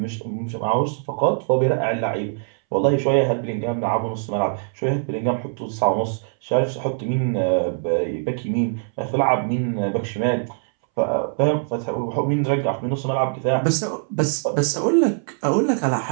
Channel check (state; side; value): silent; left; 63 dB below the other